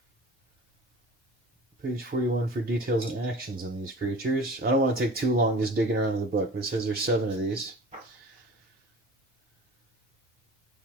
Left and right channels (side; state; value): both; normal; correlation 0.41